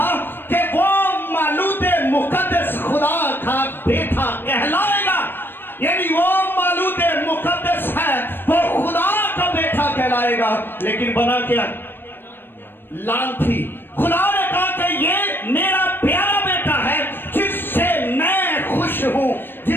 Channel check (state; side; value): late; right; 0.098 ms